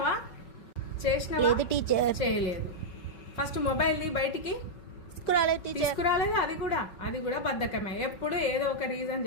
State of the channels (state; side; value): late; right; 5.5 ms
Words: లేదు టీచర్. చేయలేదు. ఫస్ట్ మొబైల్ బయటికి తీసుకురాలేదు. అది కూడా బద్ధకమే. ఎప్పుడు ఏదో ఒక రీజన్